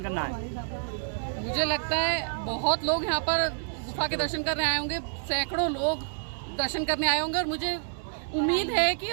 करना है? मुझे लगता है बहुत लोग यहाँ पर गुफा के दर्शन करने आए होंगे, सैकड़ों लोग दर्शन करने आए होंगे, और मुझे उम्मीद है कि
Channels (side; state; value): left; silent; digital silence